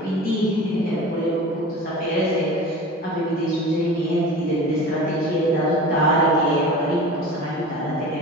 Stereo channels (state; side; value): normal; both; correlation 0.36